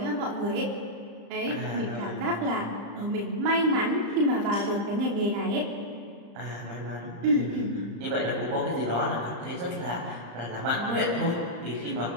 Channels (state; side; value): late; left; 35 ms